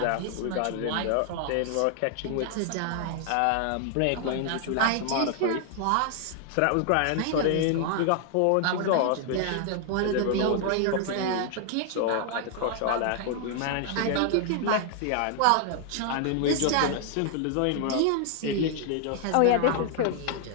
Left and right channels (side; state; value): both; different; correlation 0.00